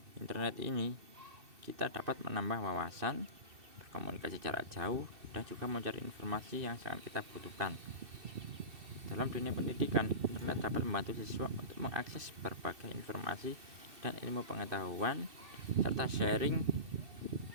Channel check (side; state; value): left; late; 2.7 ms